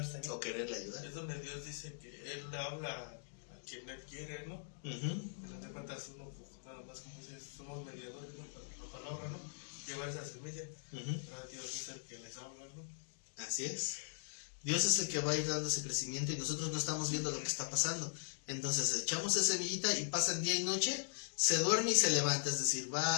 también. O quererle ayudar. es donde Dios dice que Él habla a quien Él quiere, ¿no? No te cuentas uno, pues, nada más como dices, somos mediadores, ¿no? Para la palabra, ¿no? Llevar esa semilla. Pero Dios es el que les habla, ¿no? Así es. Dios es el que va a ir dando ese crecimiento y nosotros no estamos viendo lo que está pasando. Entonces echamos esa semillita y pasan día y noche, se duerme y se levanta, es decir,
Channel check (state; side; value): silent; right; digital silence